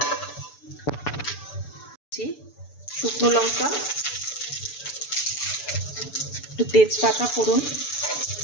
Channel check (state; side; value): late; right; 6.9 ms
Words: শুকনো লঙ্কা, একটু তেজপাতা ফোড়ন